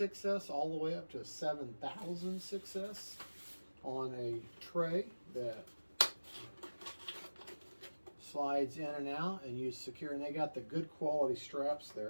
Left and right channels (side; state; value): both; inverted; correlation -1.00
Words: all the way up to a 7000 6S on a tray that slides in and out, and you secure, and they got the good quality straps